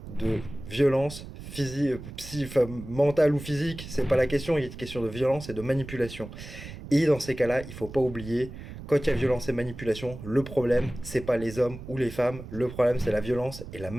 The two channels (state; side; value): noise; right; rumble, 12 dB below the sound